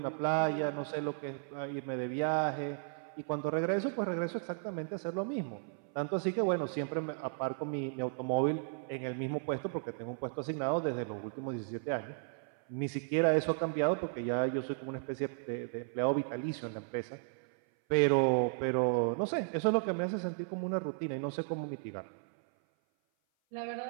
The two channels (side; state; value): left; silent; 55 dB below the other